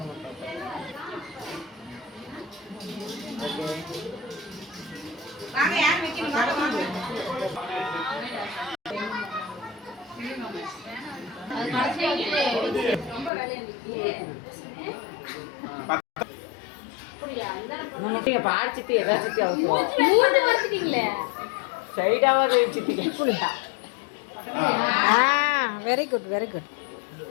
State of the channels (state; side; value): drops out; right; at 13.3 s